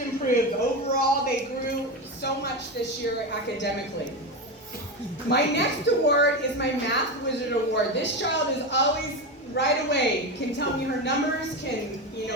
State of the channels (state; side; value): normal; both; correlation 0.17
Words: Overall, they grew so much this year academically. My next award is my Math Wizard Award. This child is always right away, can tell me her numbers, can,